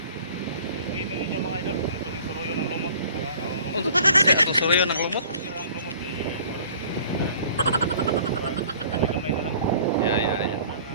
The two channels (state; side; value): inverted; both; correlation -0.50